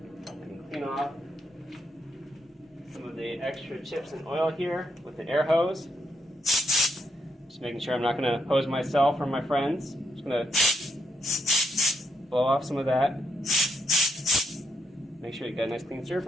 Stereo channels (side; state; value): both; normal; correlation 0.79